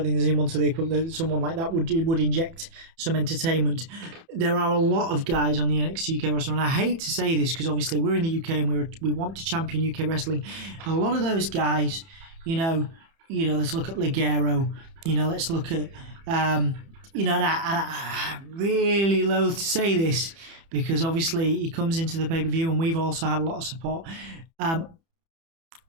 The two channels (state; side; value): late; left; 30 ms